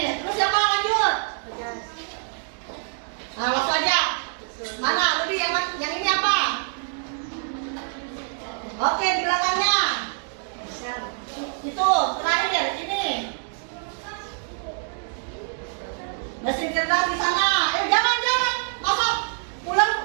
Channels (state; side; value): silent; left; 58 dB below the other